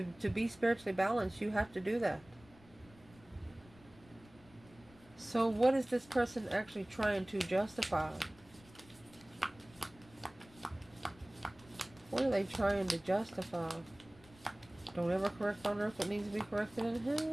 be spiritually balanced, you have to do that. So what is this person actually trying to justify? What are they trying to justify? Don't ever correct on earth what needs to be corrected in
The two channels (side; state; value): left; noise; rumble, 25 dB below the sound